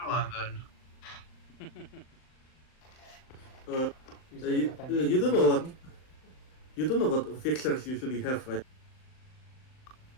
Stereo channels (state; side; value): late; right; 38 ms